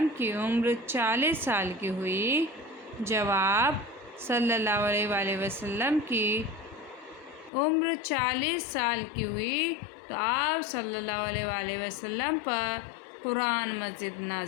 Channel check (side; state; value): right; drops out; at 7.5 s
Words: की उम्र 40 साल की हुई, जब आप सल्लल्लाहु अलैहि वसल्लम की उम्र 40 साल की हुई तो आप सल्लल्लाहु अलैहि वसल्लम पर कुरान मजीद